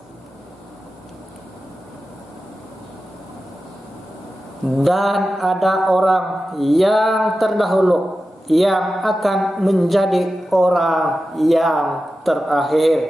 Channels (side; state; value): both; normal; correlation 0.93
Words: dan ada orang yang terdahulu yang akan menjadi orang yang